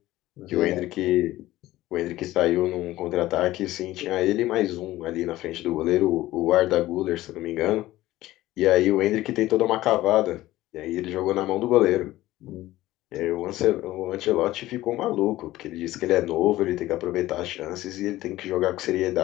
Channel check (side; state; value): right; quieter; 16.2 dB